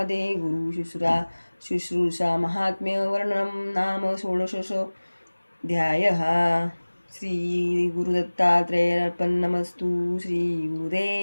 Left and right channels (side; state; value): both; inverted; correlation -1.00